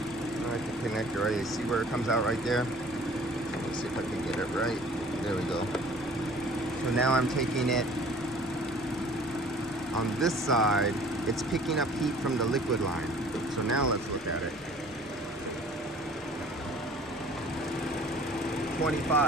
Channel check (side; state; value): both; normal; correlation 0.51